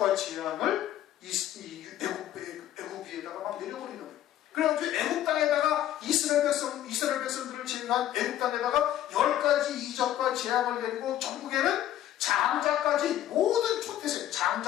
재앙을 애굽 위에다가 막 내려버리는 거예요. 그래가지고 애굽 땅에다가 이스라엘 백성들을 제외한 애굽 땅에다가 10가지 이적과 재앙을 내리고 전국에는 장자까지 모든 초태생,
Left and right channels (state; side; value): quieter; right; 12.4 dB